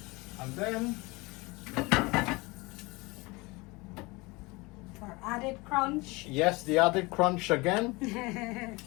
And then For added crunch. yes, the added crunch again,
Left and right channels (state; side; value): quieter; right; 24.5 dB